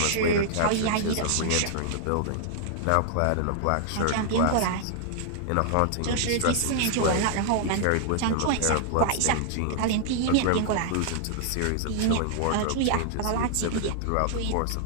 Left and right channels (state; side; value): different; both; correlation -0.01